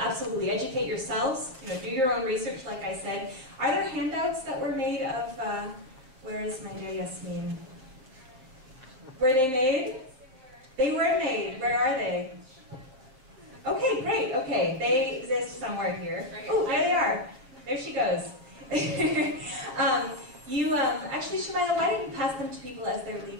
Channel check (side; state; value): left; late; 7.6 ms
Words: Educate yourselves. You know, do your own research, like I said. Are there handouts that were made of, where is my dear Yasmin? Were they made? They were made. Where are they? Okay, great, okay. They exist somewhere here. Oh, there they are. There she goes. Actually, Shemila, why don't you pass them to people as they're